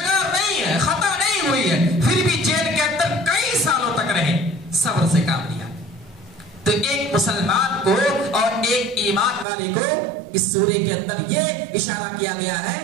نہیں ہے، خطا نہیں ہوئی ہے، پھر بھی جیل کے اندر کئی سالوں تک رہے، صبر سے کام لیا۔ تو ایک مسلمان کو اور ایک ایمان والے کو اس سورے کے اندر یہ اشارہ کیا گیا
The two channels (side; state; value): left; drops out; at 9.5 s